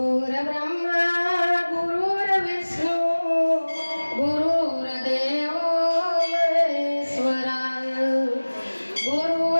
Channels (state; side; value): inverted; both; correlation -1.00